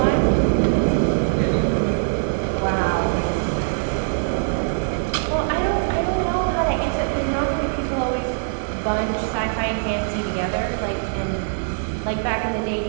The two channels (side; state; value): left; silent; digital silence